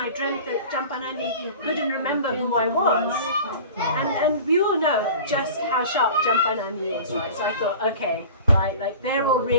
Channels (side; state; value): both; inverted; correlation -0.39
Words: dreamt that Champanani couldn't remember who I was. And we all know just how sharp Champanani is, right? So I thought, okay, right, like they're all